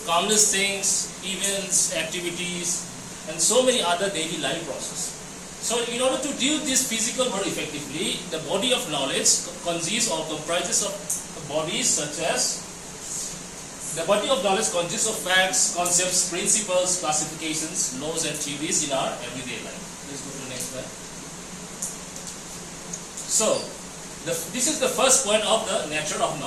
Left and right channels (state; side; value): identical; both; correlation 1.00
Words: countless things, events, activities, and so many other daily life processes. So in order to deal this physical world effectively, the body of knowledge consists or comprises of bodies such as the body of knowledge consists of facts, concepts, principles, classifications, laws, and theories in our everyday life. Let's go to the next slide. So, this is the first point of the nature of